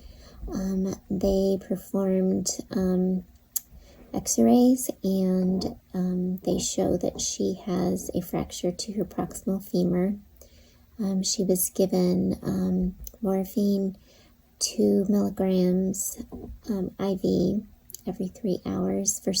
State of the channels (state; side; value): identical; both; correlation 1.00